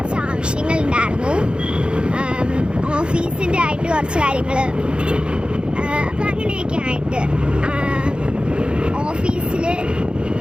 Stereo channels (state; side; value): late; left; 0.053 ms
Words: ആവശ്യങ്ങളുണ്ടായിരുന്നു, ഓഫീസിൻ്റെ ആയിട്ട് കുറച്ച് കാര്യങ്ങൾ. അപ്പം അങ്ങനെയൊക്കെ ആയിട്ട് ഓഫീസിൽ